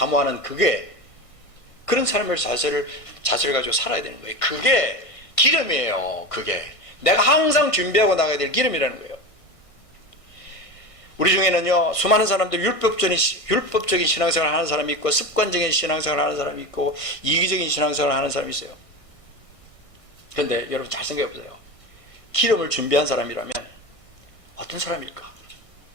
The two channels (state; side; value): late; right; 1.6 ms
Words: 그런 삶을 자세를 가지고 살아야 되는 거예요. 그게 기름이에요. 그게 내가 항상 준비하고 나가야 될 기름이라는 거예요. 우리 중에는요, 수많은 사람들 율법적인 신앙생활을 하는 사람이 있고, 습관적인 신앙생활을 하는 사람이 있고, 이기적인 신앙생활을 하는 사람이 있어요. 그런데 여러분 잘 생각해 보세요. 기름을 준비한 사람이라면 어떤 사람일까?